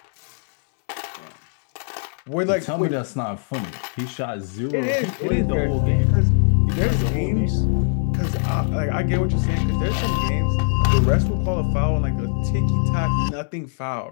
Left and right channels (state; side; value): silent; right; 64 dB below the other